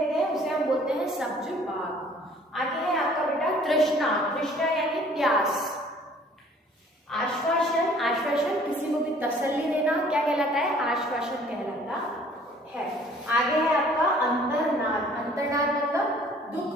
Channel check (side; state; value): both; normal; correlation 0.55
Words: हैं उसे हम बोलते हैं सब्जबाग। आगे है आपका बेटा तृष्णा, तृष्णा यानी प्यास। आश्वासन, आश्वासन किसी को भी तसल्ली देना क्या कहलाता है, आश्वासन कहलाता है। आगे है आपका अंतर्नाद, अंतर्नाद मतलब